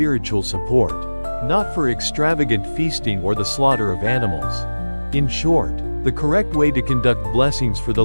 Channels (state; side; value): inverted; both; correlation -1.00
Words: support, not for extravagant feasting or the slaughter of animals. In short, the correct way to conduct blessings for the